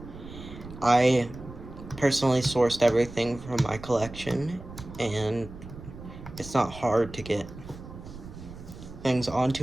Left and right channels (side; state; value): right; noise; rumble, 14 dB below the sound